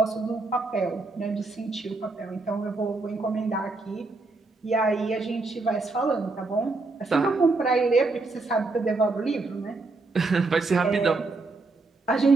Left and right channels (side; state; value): left; quieter; 3.5 dB